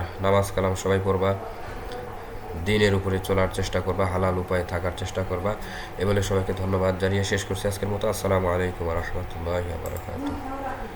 নামাজ কালাম সবাই পড়বা, দিনের উপরে চলার চেষ্টা করবা, হালাল উপায়ে থাকার চেষ্টা করবা। এ বলে সবাইকে ধন্যবাদ জানিয়ে শেষ করছি আজকের মতো। আসসালামু আলাইকুম ওয়া রাহমাতুল্লাহি ওয়া বারাকাতুহু।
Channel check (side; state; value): both; identical; correlation 1.00